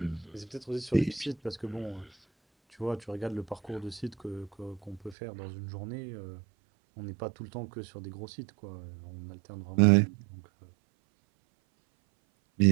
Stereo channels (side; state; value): left; drops out; at 5.2 s